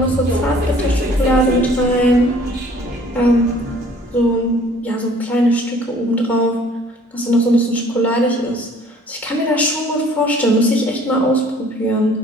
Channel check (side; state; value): both; normal; correlation 0.54